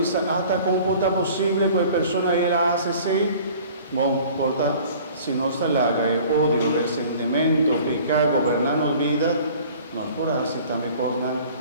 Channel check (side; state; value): both; inverted; correlation -0.48